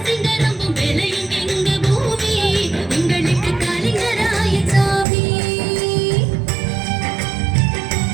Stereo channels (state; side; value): drops out; left; at 5.1 s